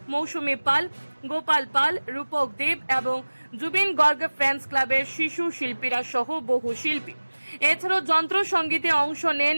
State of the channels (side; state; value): both; inverted; correlation -1.00